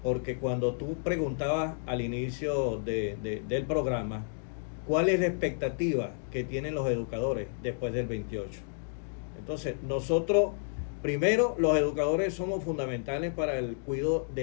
porque cuando tú preguntabas al inicio del programa cuál es la expectativa que tienen los educadores después del 28. Entonces, nosotros, primero, los educadores somos fundamentales para el cuidado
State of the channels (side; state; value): right; silent; digital silence